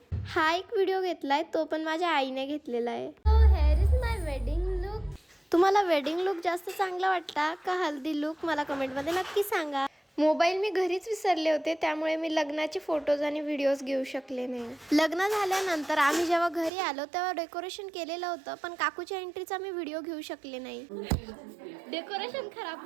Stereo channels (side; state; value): left; drops out; at 16.7 s